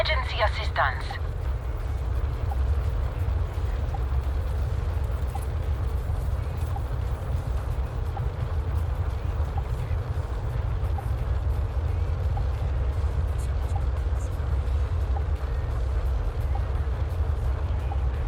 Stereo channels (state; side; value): identical; both; correlation 1.00